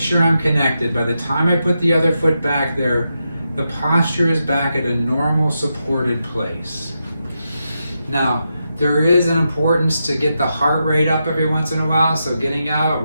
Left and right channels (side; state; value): both; inverted; correlation -0.86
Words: I'm connected. By the time I put the other foot back there, the posture is back at a normal supported place. Now, there is an importance to get the heart rate up every once in a while, so getting